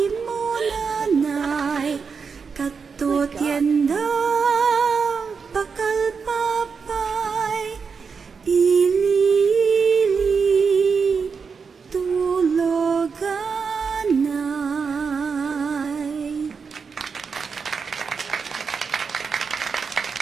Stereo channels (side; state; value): left; quieter; 5.6 dB